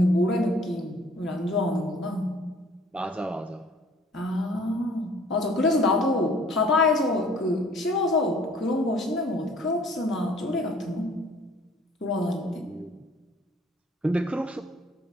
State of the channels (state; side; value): normal; both; correlation 0.55